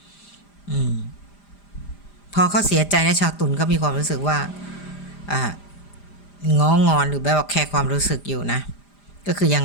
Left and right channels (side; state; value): right; late; 5.0 ms